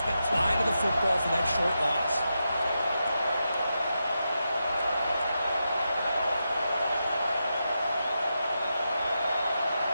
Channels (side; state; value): both; inverted; correlation -0.87